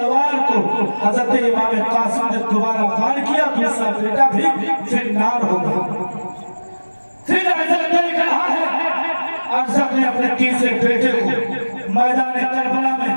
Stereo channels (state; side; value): inverted; both; correlation -1.00